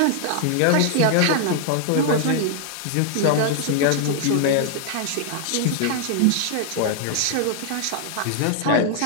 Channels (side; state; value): both; different; correlation 0.00